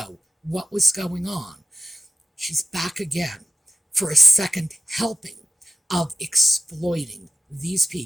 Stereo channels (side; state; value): both; normal; correlation 0.93